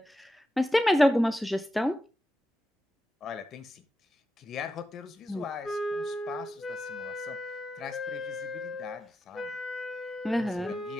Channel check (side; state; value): both; normal; correlation 0.90